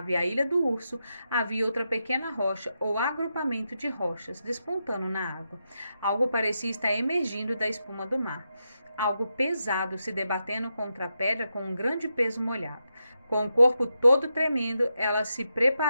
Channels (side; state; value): both; inverted; correlation -0.86